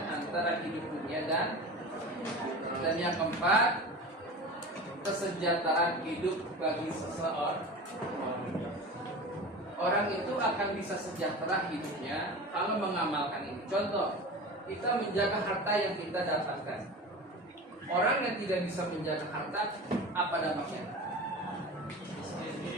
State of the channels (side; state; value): both; normal; correlation 0.32